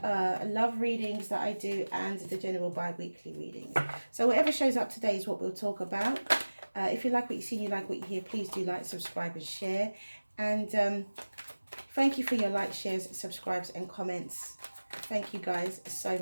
love readings that I do and the general bi-weekly readings. So whatever shows up today is what we'll talk about. If you like what you see, you like what you hear, please do like, subscribe and share. And thank you for your likes, shares, subscribes and comments. Thank you guys so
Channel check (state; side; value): inverted; both; correlation -1.00